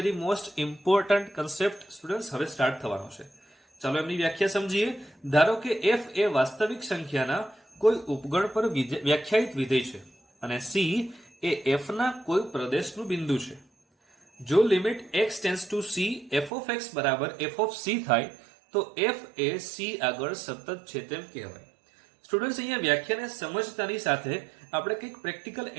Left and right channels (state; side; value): drops out; left; at 16.5 s